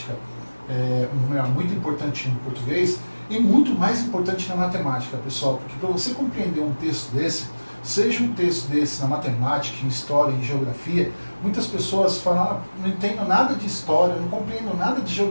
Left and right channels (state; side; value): inverted; both; correlation -1.00